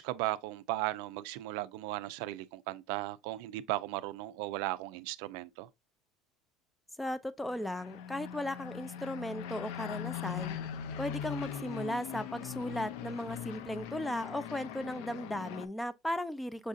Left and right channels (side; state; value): both; normal; correlation 0.49